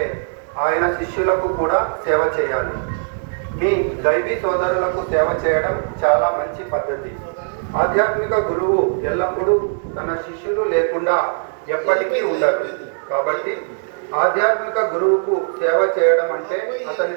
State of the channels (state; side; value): silent; left; 66 dB below the other